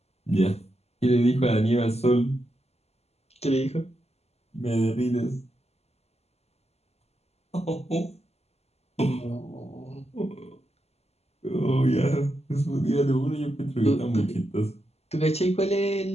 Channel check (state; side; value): late; right; 0.30 ms